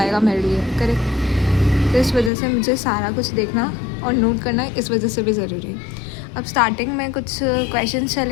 मेरे लिए। करेक्ट। तो इस वजह से मुझे सारा कुछ देखना और नोट करना इस वजह से भी ज़रूरी है। अब स्टार्टिंग में कुछ क्वेश्चन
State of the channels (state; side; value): drops out; right; at 2.3 s